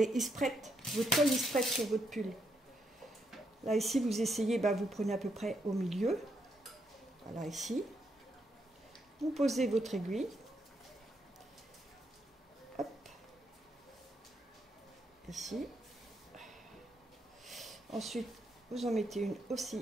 il se prête, votre col il se prête sur votre pull. Là ici vous essayez, bah, vous prenez à peu près au milieu. Voilà, ici. Vous posez votre aiguille. Hop. Ici. Ensuite, vous en mettez une aussi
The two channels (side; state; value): both; normal; correlation 0.77